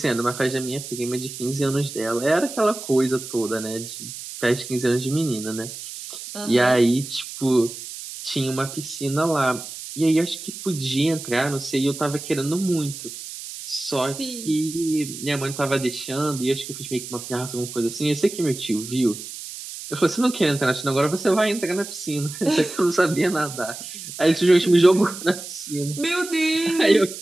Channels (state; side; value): noise; right; hiss, 11 dB below the sound